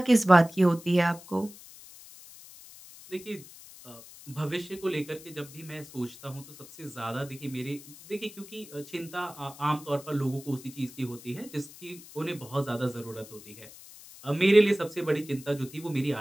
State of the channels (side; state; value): left; noise; hiss, 18 dB below the sound